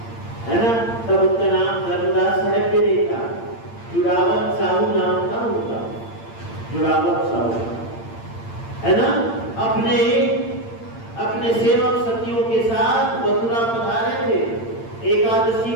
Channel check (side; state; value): right; late; 8.8 ms